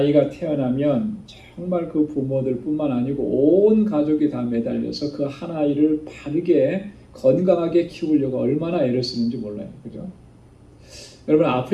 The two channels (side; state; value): both; identical; correlation 1.00